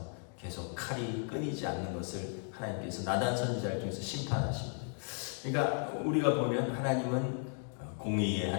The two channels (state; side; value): silent; right; 54 dB below the other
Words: 계속 칼이 끊이지 않는 것을 하나님께서 나단 선지자를 통해서 심판하십니다. 그러니까 우리가 보면 하나님은 공의의